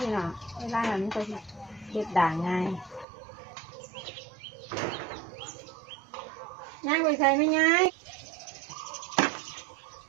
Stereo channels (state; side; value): drops out; left; at 3.1 s